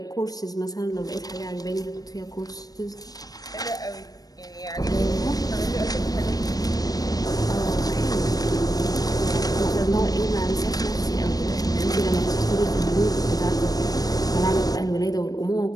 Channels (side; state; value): right; late; 0.18 ms